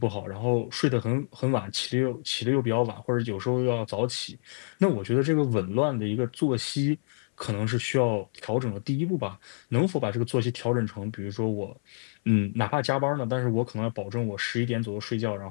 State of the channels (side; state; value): right; silent; 60 dB below the other